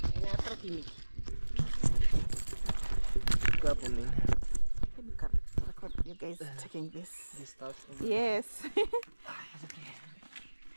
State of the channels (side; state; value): both; inverted; correlation -1.00